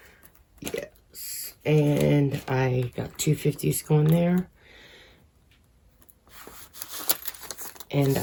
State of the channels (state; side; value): identical; both; correlation 1.00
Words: Yes, and I got 250s going there. And